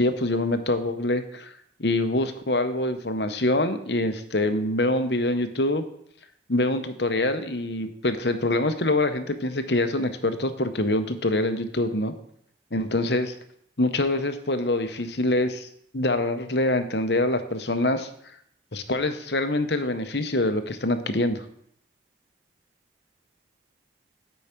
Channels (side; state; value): both; normal; correlation 0.20